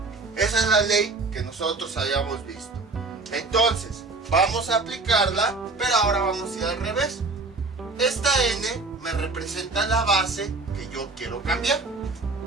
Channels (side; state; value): left; quieter; 3.5 dB